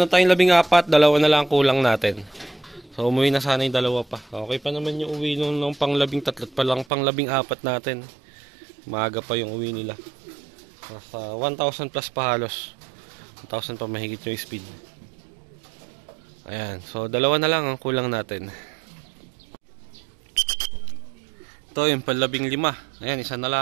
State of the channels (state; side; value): drops out; left; at 6.9 s